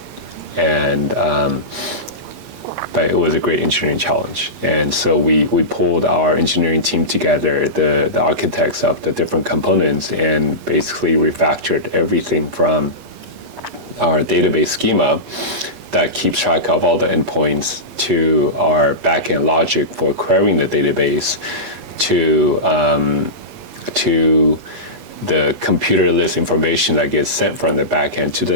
And but it was a great engineering challenge. And so we pulled our engineering team together, the architects of the different components, and basically refactored everything from our database schema that keeps track of all the endpoints, to our backend logic for querying the database, to the computer list information that gets sent from the backend to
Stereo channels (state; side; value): late; left; 8.3 ms